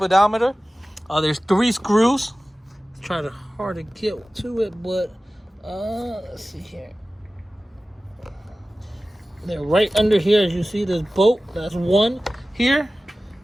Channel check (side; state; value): both; normal; correlation 0.96